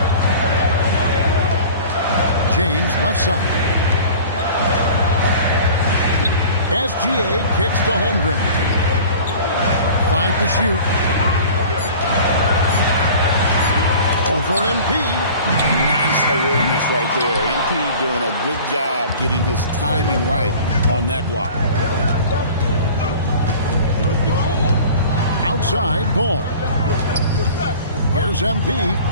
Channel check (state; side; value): inverted; both; correlation -0.43